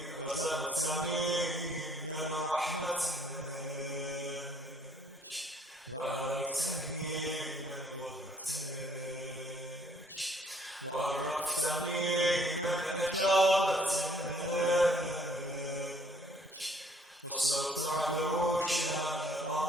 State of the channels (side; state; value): both; normal; correlation 0.62